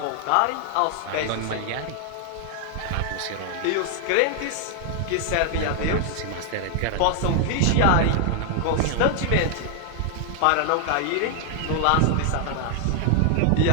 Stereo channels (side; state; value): both; different; correlation 0.00